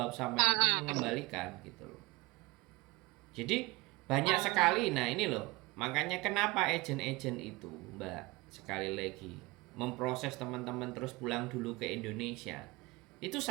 sampean untuk mengembalikan gitu loh. Jadi banyak sekali, nah ini loh, makanya kenapa agen-agen itu, Mbak, sekali lagi, memproses teman-teman terus pulang dulu ke Indonesia. Itu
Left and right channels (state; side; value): quieter; left; 23.0 dB